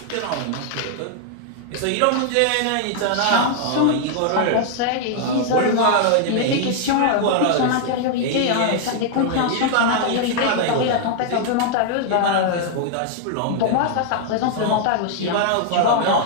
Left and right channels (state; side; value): different; both; correlation 0.00